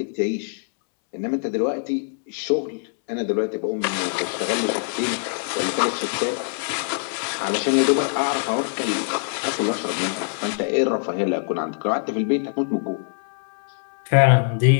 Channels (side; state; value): right; silent; 63 dB below the other